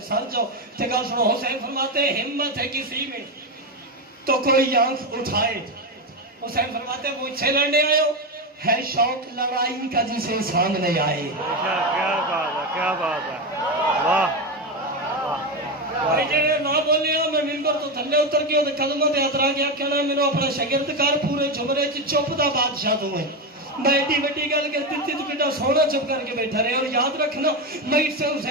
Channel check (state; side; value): normal; both; correlation 0.13